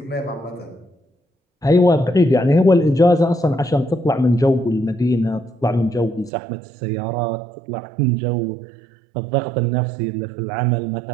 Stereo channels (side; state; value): left; drops out; at 6.3 s